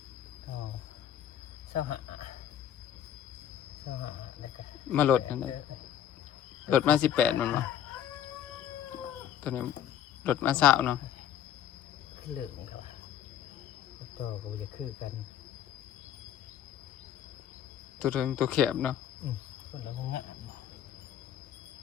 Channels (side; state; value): right; quieter; 10.3 dB